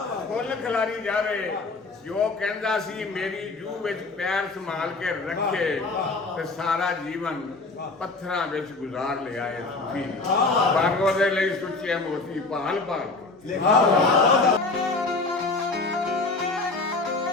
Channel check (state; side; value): quieter; right; 3.6 dB